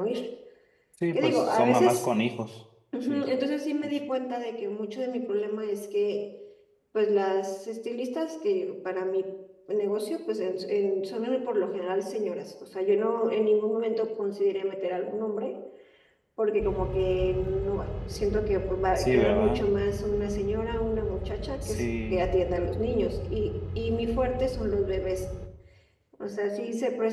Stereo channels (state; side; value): identical; both; correlation 1.00